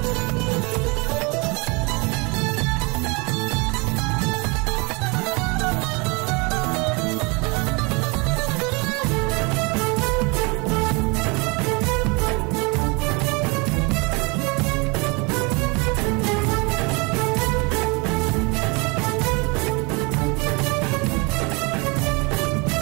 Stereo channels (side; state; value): left; quieter; 28.9 dB